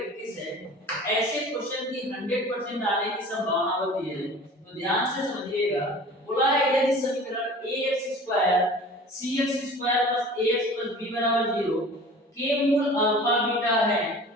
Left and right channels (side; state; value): both; normal; correlation 0.42